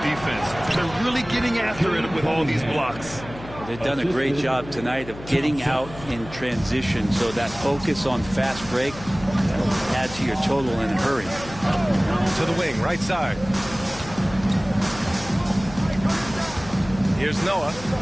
defense. They're really getting after it with all these blocks. They've done a great job tonight of getting out in transition, so that focus on fast break will add to your total in a hurry. To the wing, right side. Here's Noah.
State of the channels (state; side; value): noise; left; hum, 15 dB below the sound